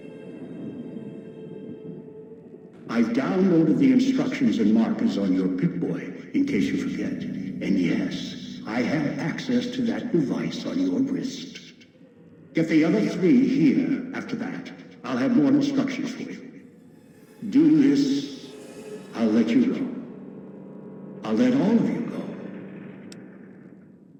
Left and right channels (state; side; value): identical; both; correlation 1.00